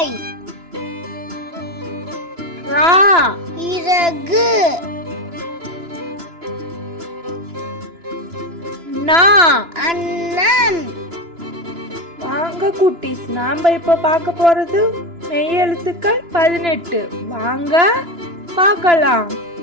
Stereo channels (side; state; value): left; late; 2.9 ms